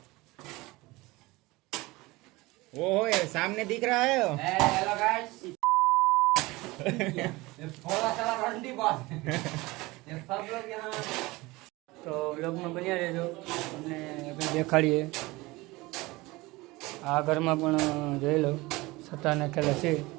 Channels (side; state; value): left; quieter; 21.6 dB